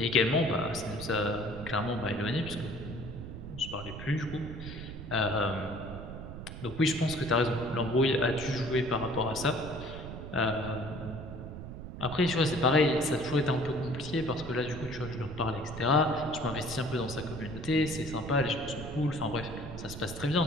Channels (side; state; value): right; noise; rumble, 10 dB below the sound